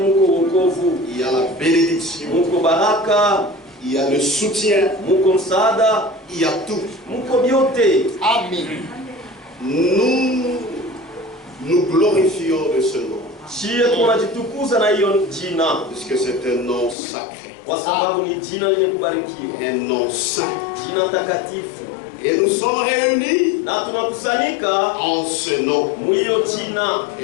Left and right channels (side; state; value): right; drops out; at 16.9 s